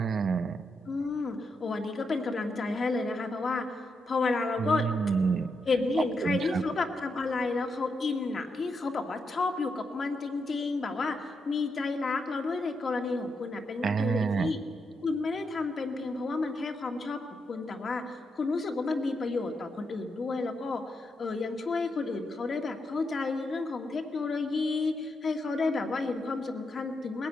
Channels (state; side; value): normal; both; correlation 0.82